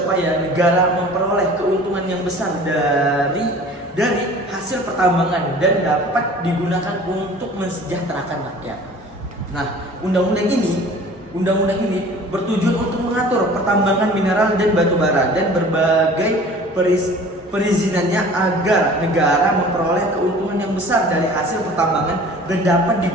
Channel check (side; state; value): both; normal; correlation 0.45